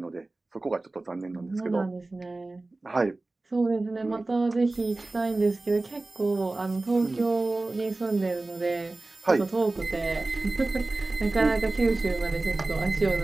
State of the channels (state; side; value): quieter; left; 3.1 dB